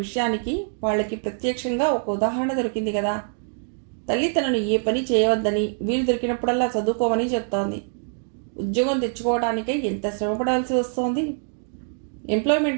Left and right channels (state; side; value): silent; left; 62 dB below the other